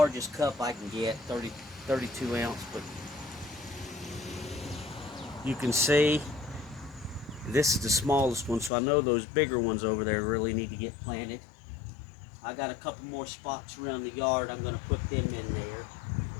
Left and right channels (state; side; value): drops out; right; at 8.7 s